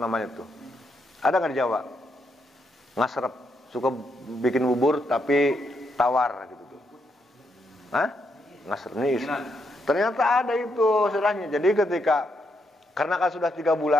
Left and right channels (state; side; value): normal; both; correlation 0.79